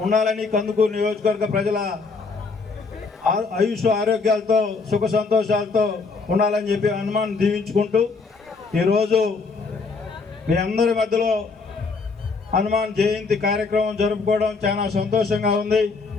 ఉండాలని, కందుకూరు నియోజకవర్గ ప్రజల ఆయుష్ ఆరోగ్యాలతో సుఖ సంతోషాలతో ఉండాలని చెప్పి హనుమాన్ దీవించుకుంటూ ఈరోజు మీ అందరి మధ్యలో హనుమాన్ జయంతి కార్యక్రమం జరుపుకోవడం చాలా సంతోషంగా ఉంది.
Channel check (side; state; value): right; quieter; 4.4 dB